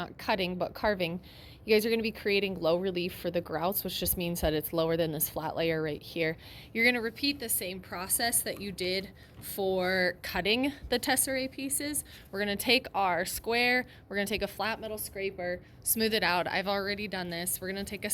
cutting, but carving, you guys are going to be creating low relief for the grouts, which just means that it's lower than this flat layer right here. You're going to repeat the same process that you did for cutting the tesserae pieces. We're going to take our square, we're going to take a flat metal scraper, smooth it out. I've already done this. We're going to take a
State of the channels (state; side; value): identical; both; correlation 1.00